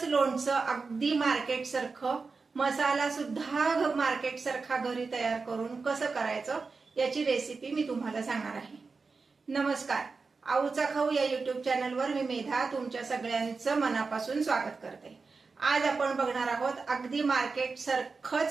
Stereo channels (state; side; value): quieter; left; 4.4 dB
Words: लोणचं अगदी मार्केट सारखं, मसाला सुद्धा मार्केट सारखा घरी तयार करून कसं करायचं याची रेसिपी मी तुम्हाला सांगणार आहे. नमस्कार, आऊचा खाऊ या युट्यूब चॅनलवर मी मेधा तुमच्या सगळ्यांचं मनापासून स्वागत करते. आज आपण बघणार आहोत अगदी मार्केट